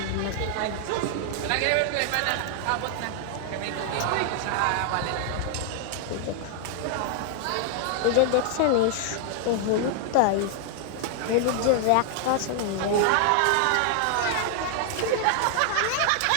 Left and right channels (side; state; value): both; different; correlation 0.00